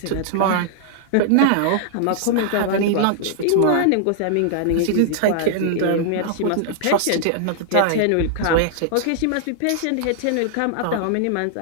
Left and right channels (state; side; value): different; both; correlation -0.01